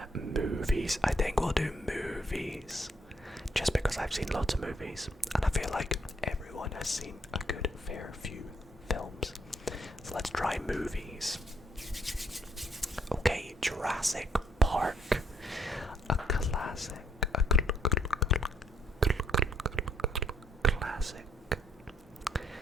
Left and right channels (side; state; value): both; normal; correlation 0.69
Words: Movies. I think we'll do movies. Just because I've seen lots of movies, and I feel like everyone has seen a good fair few films. So let's try movies. Okay, Jurassic Park. A classic. A classic.